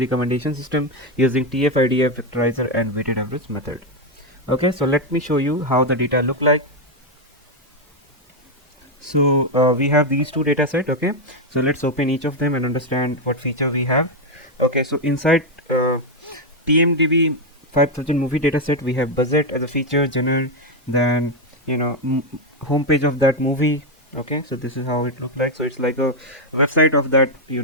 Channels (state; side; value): normal; both; correlation 0.04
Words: recommendation system using TF-IDF vectorizer and weighted average method. Okay, so let me show you how the data look like. So we have these two data set. Okay, so let's open each of them and understand what feature we have. Okay, so inside TMDB 5000 movie dataset we have budget as a feature, genre, then home page of that movie. Okay, so this is how it looks like. So it's like a website of that